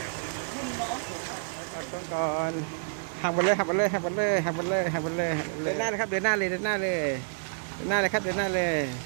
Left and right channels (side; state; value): left; silent; 59 dB below the other